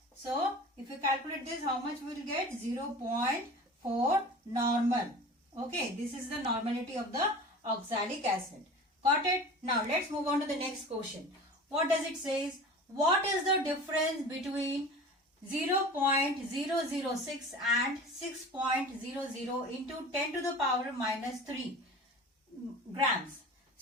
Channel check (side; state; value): both; normal; correlation 0.38